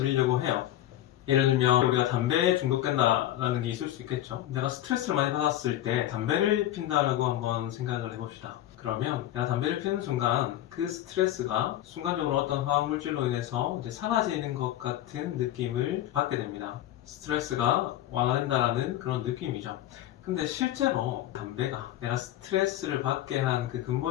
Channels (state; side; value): quieter; right; 13.3 dB